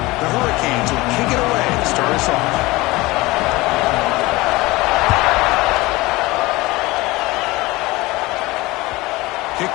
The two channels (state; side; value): quieter; right; 20.9 dB